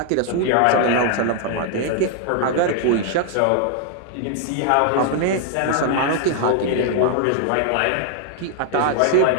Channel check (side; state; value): both; different; correlation 0.00